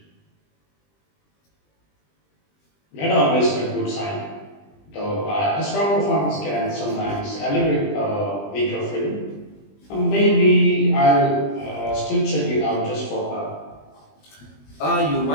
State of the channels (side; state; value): right; late; 20 ms